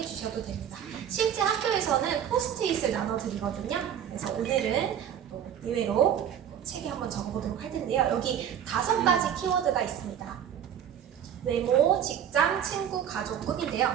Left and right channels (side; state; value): left; quieter; 9.4 dB